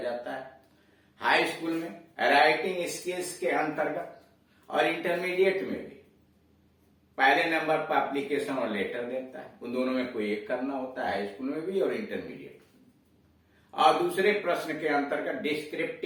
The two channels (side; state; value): both; identical; correlation 1.00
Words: है। हाई स्कूल में राइटिंग स्किल्स के अंतर्गत और इंटरमीडिएट में भी पहले नंबर पर एप्लीकेशन और लेटर देता है। उन दोनों में कोई एक करना होता है, हाई स्कूल में भी और इंटरमीडिएट में। और दूसरे प्रश्न के अंतर्गत